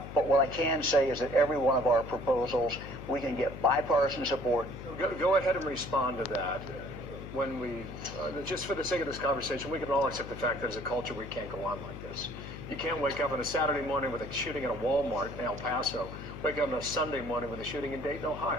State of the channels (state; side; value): noise; left; hum, 11 dB below the sound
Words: But what I can say is that every one of our proposals, we can get bipartisan support. Go ahead and respond to that. When we, just for the sake of this conversation, we can all accept the fact that as a culture we can't go on like this. You can't wake up on a Saturday morning with a shooting at a Walmart in El Paso, wake up on a Sunday morning with a shooting in Dayton, Ohio.